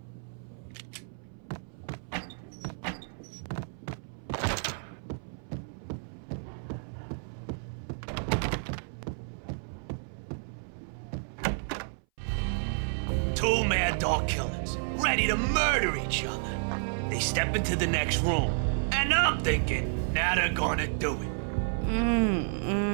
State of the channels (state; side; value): silent; left; 57 dB below the other